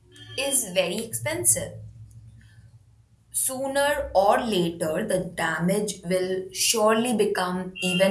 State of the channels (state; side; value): identical; both; correlation 1.00